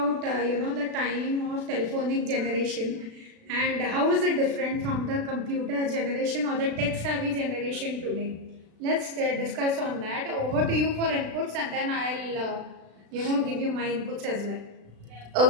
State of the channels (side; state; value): left; late; 36 ms